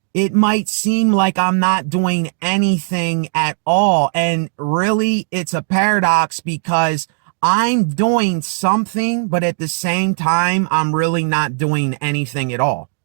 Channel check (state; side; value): silent; left; digital silence